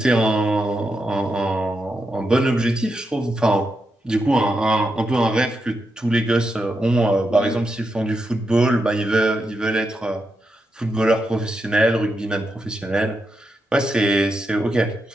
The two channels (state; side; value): normal; both; correlation 0.85